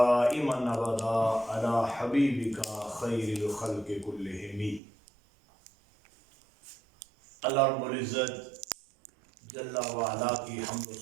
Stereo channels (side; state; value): left; drops out; at 4.8 s